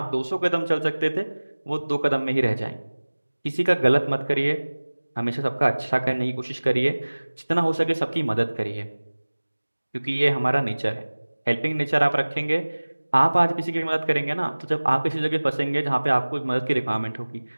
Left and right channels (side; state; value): both; inverted; correlation -1.00